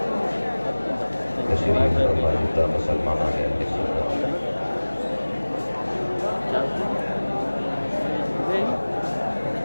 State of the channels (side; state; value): both; inverted; correlation -1.00